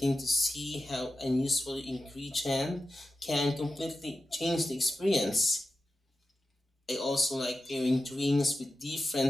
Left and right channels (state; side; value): normal; both; correlation 0.91